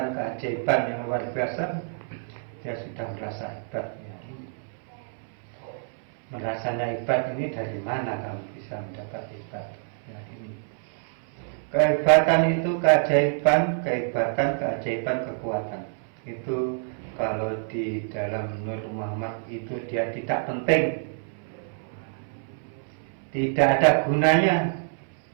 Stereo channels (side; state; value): left; silent; 60 dB below the other